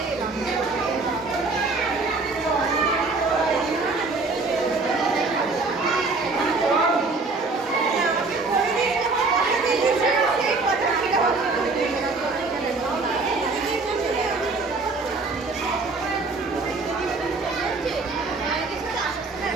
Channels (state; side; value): quieter; left; 3.8 dB